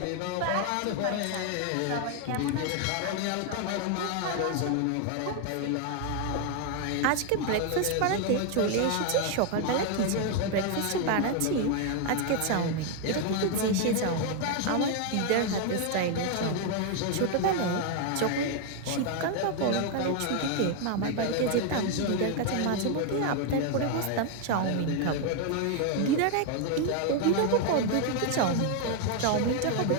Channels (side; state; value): both; different; correlation 0.01